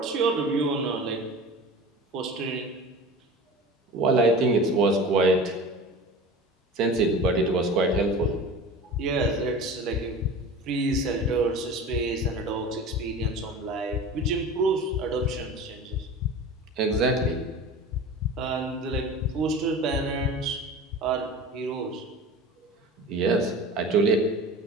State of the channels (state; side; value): normal; both; correlation 0.35